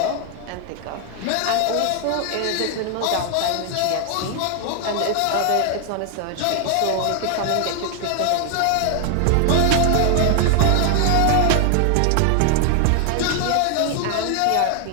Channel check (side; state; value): both; different; correlation 0.00